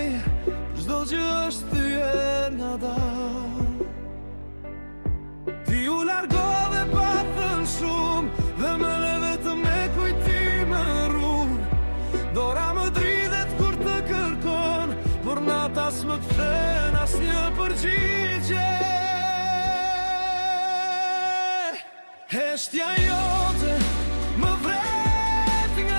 çdo që është thyer nga dar. Ti u largove pa thënë shumë dhe më le vetëm me kujtime rrugë. Dora më dridhet kur të kërkon, por nata s'më kthen asnjë përgjigje. Heshtja jote më vret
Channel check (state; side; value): inverted; both; correlation -1.00